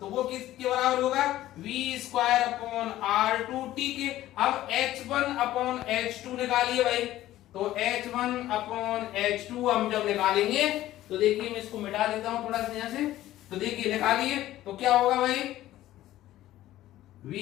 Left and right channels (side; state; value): right; quieter; 14.5 dB